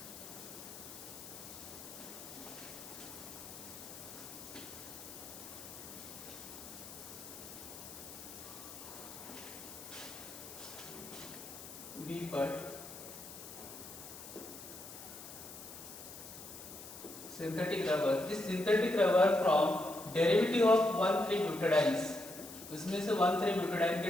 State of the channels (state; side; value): noise; left; hiss, 13 dB below the sound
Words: बी पर synthetic rubber, this synthetic rubber from derivative of one three butadienes, उसमें से 1,3-ब्यूटाडाइन के